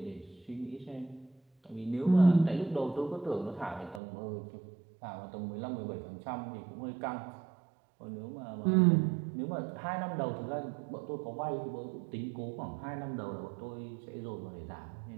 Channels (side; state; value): left; drops out; at 4.0 s